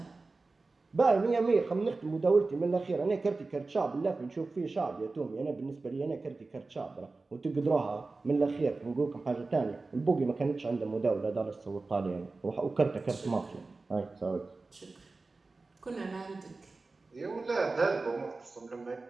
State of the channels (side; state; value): left; quieter; 3.6 dB